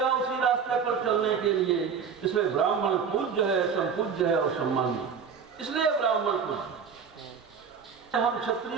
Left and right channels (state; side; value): quieter; left; 6.4 dB